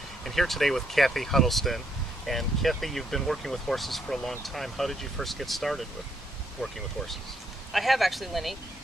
and here today with Kathy Huddleston. And Kathy, you've been working with horses for a long time. How did you first get started with working with horses? I have actually, Lenny.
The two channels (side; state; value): both; normal; correlation 0.74